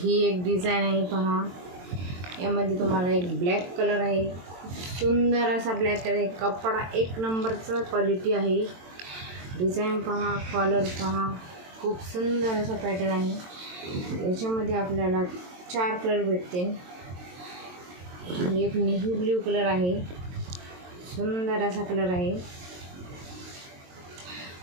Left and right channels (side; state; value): left; late; 22 ms